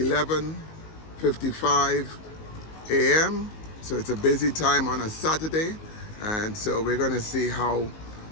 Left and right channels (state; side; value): late; right; 19 ms